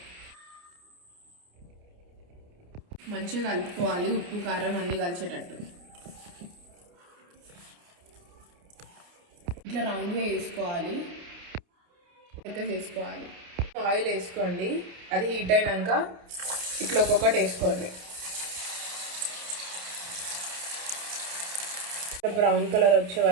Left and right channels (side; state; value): left; late; 29 ms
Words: మంచిగా కలుపుకోవాలి, ఉప్పు కారం అన్నీ కలిసేటట్టు. ఇట్లా రౌండ్గా వేసుకోవాలి, లెక్క చేసుకోవాలి. ఆయిల్ వేసుకోండి, అది హీట్ అయినాక ఇట్లా ఒక్కొక్కటి వేసుకోండి. బ్రౌన్ కలర్ వచ్చే